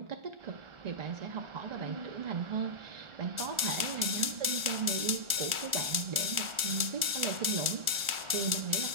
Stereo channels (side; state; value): left; late; 1.4 ms